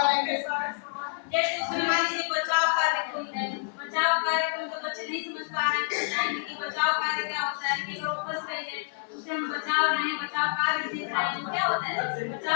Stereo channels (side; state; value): right; silent; 59 dB below the other